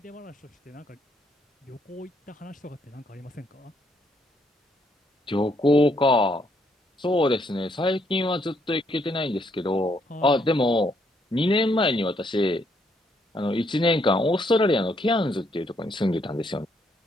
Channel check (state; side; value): normal; both; correlation 0.72